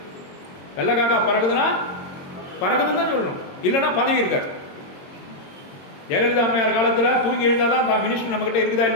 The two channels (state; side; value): late; right; 22 ms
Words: வெள்ளை காக்கா பறகுதுன்னா பறகுதுன்னு தான் சொல்லணும், இல்லைன்னா பதவி இருக்காரு. ஜெயலலிதா அம்மையார் காலத்துல தூங்கி எழுந்தாதான் தான் மினிஸ்டர் நம்ம கிட்ட இருக்குதா